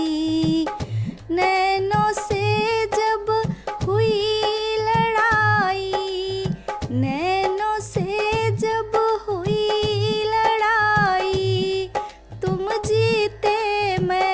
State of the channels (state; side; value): identical; both; correlation 1.00